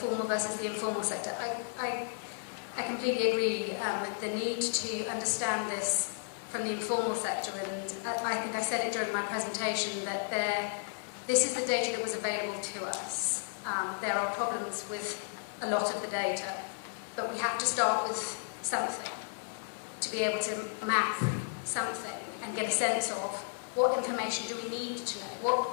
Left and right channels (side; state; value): right; silent; 56 dB below the other